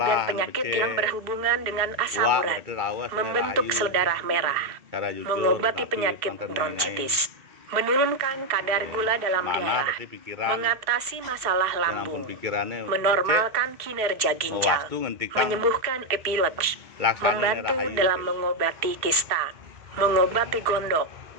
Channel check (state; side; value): late; left; 2.6 ms